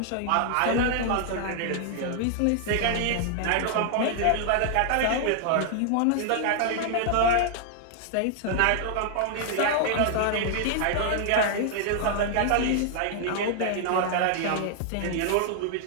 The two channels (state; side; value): different; both; correlation 0.00